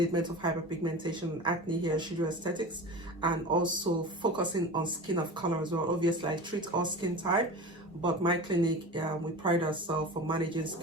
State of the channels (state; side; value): normal; both; correlation 0.32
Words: of hyperpigmentation and acne here at Shujo Aesthetics, and also focusing on skin of color as well. Obviously, I treat all skin type, but my clinic, we pride ourselves for managing